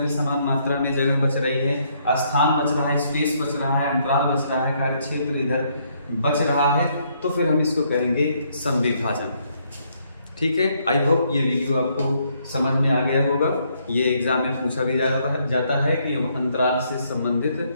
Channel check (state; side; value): inverted; both; correlation -0.71